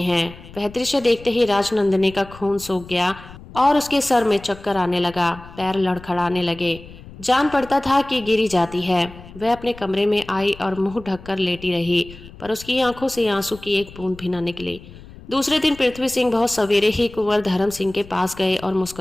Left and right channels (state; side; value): noise; left; rumble, 18 dB below the sound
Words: हैं। वह दृश्य देखते ही राजनंदिनी का खून सूख गया और उसके सर में चक्कर आने लगा, पैर लड़खड़ाने लगे। जान पड़ता था कि गिरी जाती है। वह अपने कमरे में आई और मुंह ढककर लेटी रही, पर उसकी आंखों से आंसू की एक बूंद भी न निकली। दूसरे दिन पृथ्वी सिंह बहुत सवेरे ही कुंवर धर्म सिंह के पास गए और